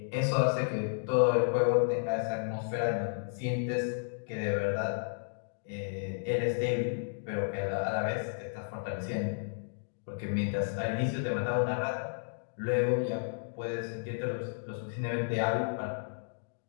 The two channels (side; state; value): right; silent; digital silence